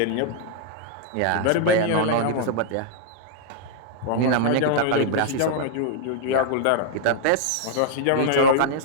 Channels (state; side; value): different; both; correlation -0.01